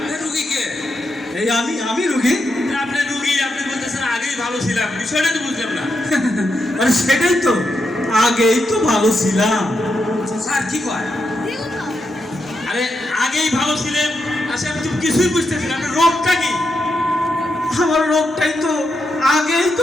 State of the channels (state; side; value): normal; both; correlation 0.84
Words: রুগী কে? এই আমি রুগী। আপনি রুগী, আপনি বলতেছেন আগেই ভালো ছিলাম, বিষয়টা তো বুঝলাম না। আরে সেটাই তো, আগেই তো ভালো ছিলাম। স্যার কি কয়? আরে আগেই ভালো ছিলেন, আচ্ছা আমি তো কিছুই বুঝতেছি না, আপনার রোগটা কি? আমার রোগটাই তো, আগেই